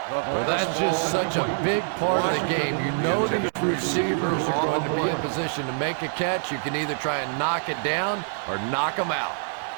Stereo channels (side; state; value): left; silent; 61 dB below the other